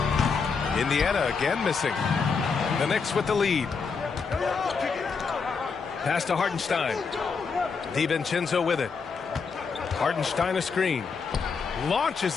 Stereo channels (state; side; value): quieter; right; 5.3 dB